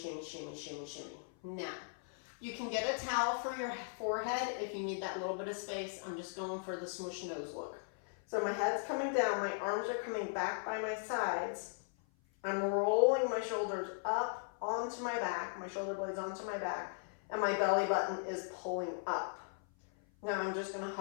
shimmy, shimmy, shimmy. Now, you can get a towel for your forehead if you need that little bit of space. I'm just going for the smoosh nose look. So my head's coming down, my arms are coming back by my sides. I'm rolling my shoulders up onto my back, my shoulder blades onto my back, and my belly button is pulling up. Now I'm just going to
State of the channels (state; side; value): silent; right; 52 dB below the other